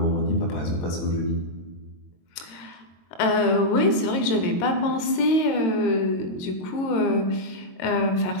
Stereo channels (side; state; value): right; late; 22 ms